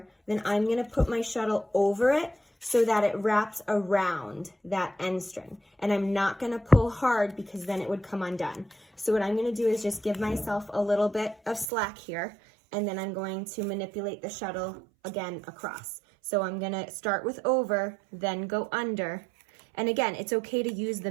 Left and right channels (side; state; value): left; drops out; at 11.7 s